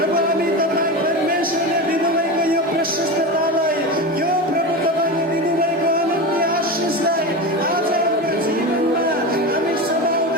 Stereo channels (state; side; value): normal; both; correlation 0.23